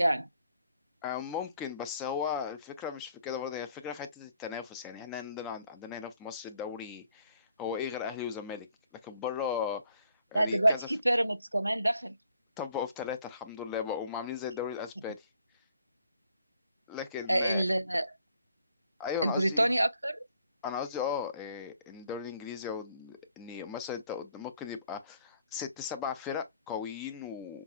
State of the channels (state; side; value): inverted; both; correlation -0.66